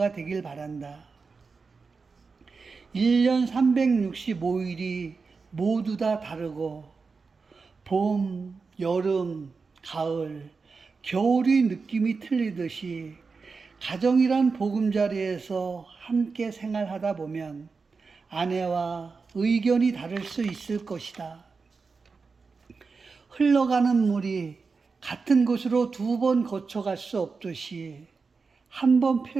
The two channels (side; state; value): left; quieter; 4.6 dB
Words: 되길 바란다. 1년 365일이 모두 다 다르고 봄, 여름, 가을, 겨울이 느낌이 틀리듯이 가정이란 보금자리에서 함께 생활하다 보면 아내와 의견이 다를 수 있을 것이다. 흘러가는 물이 같은 곳으로 2번 거쳐갈 수 없듯이 한 번